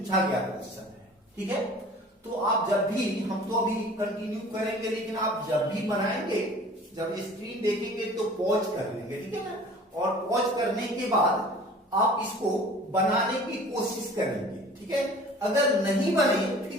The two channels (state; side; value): normal; both; correlation 0.46